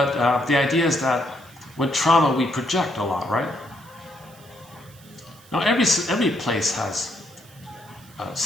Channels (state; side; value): noise; right; hiss, 25 dB below the sound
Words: the idea is that with trauma we project a lot, right? Now every place has